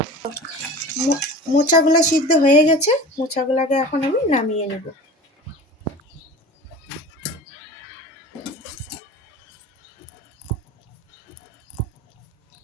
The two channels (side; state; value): both; normal; correlation 0.36